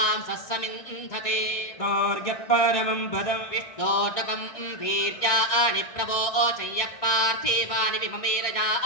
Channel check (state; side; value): late; right; 1.6 ms